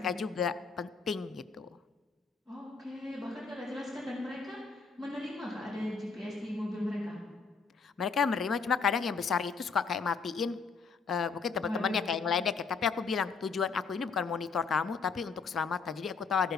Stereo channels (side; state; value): right; quieter; 5.1 dB